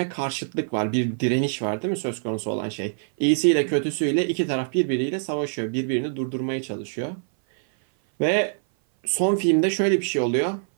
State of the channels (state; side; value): silent; left; 58 dB below the other